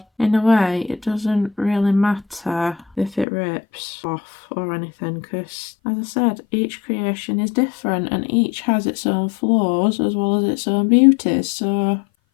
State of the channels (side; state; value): right; drops out; at 3.2 s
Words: in a way, it doesn't really matter if it rips off or anything. Because as I said, each creation is different and each has its own flaws as well as its own beauties. So